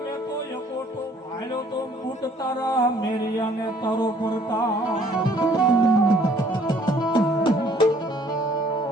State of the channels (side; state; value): both; normal; correlation 0.59